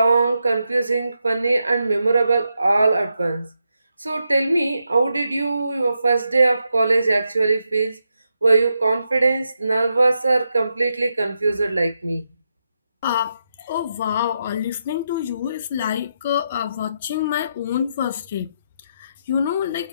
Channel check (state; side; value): inverted; both; correlation -0.84